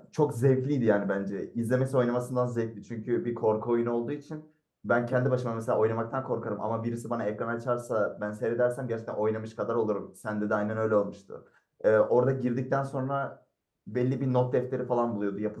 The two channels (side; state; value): both; identical; correlation 1.00